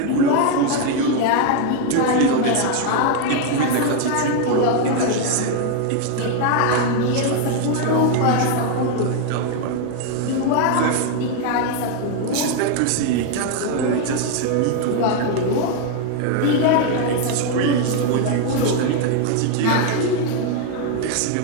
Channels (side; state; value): both; different; correlation 0.01